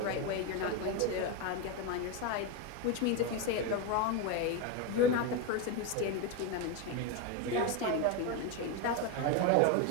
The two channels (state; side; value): different; both; correlation 0.03